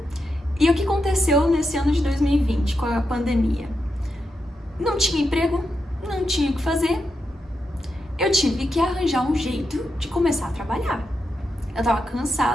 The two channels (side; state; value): both; normal; correlation 0.86